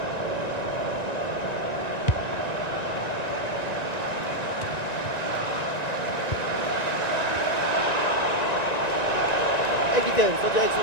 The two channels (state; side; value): late; right; 1.9 ms